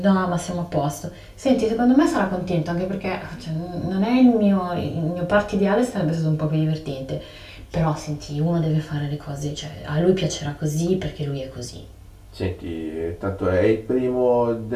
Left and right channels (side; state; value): both; identical; correlation 1.00